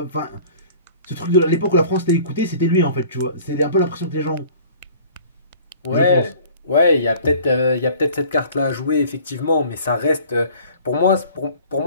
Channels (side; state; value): both; inverted; correlation -0.48